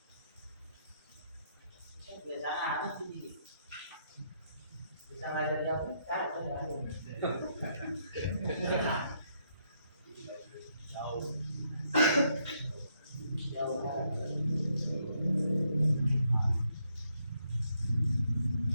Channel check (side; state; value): both; inverted; correlation -0.75